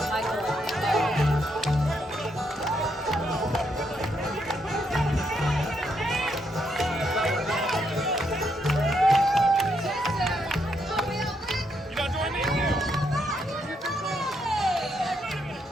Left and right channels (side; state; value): both; normal; correlation 0.77